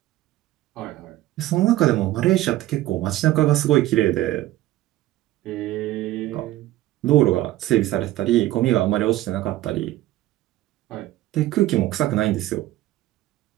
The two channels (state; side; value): quieter; left; 15.5 dB